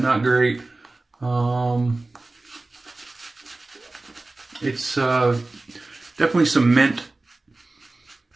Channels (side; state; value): left; quieter; 3.1 dB